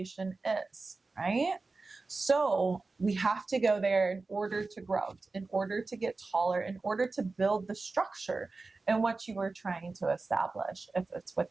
is, right? So we have to go there in order to grow, in order to get taller, in order to build the structure in what you were trying to establish. If it's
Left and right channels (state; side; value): quieter; left; 3.7 dB